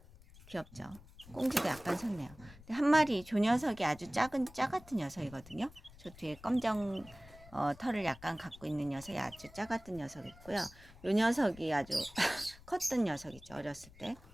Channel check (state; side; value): noise; left; rumble, 21 dB below the sound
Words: 귀엽죠? 꽁지도 약간 섰네요. 근데 한 마리 조 녀석이 아주 작은 녀석이거든요. 저 뒤에 검정 털을 약간 갖고 있는 녀석이 아주 작았던 녀석이 있고요. 요 녀석이 아주 컸던 녀석이죠. 어렸을 때.